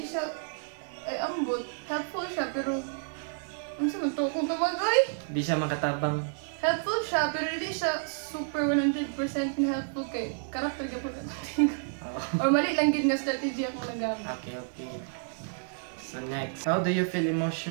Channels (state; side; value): silent; left; digital silence